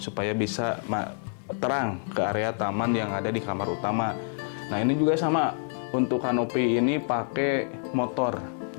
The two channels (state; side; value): silent; right; digital silence